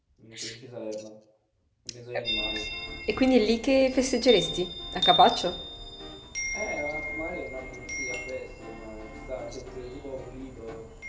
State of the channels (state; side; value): identical; both; correlation 1.00